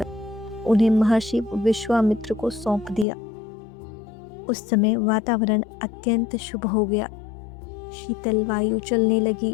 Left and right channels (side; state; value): right; drops out; at 3.1 s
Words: उन्हें महर्षि विश्वामित्र को सौंप दिया। उस समय वातावरण अत्यंत शुभ हो गया। शीतल वायु चलने लगी,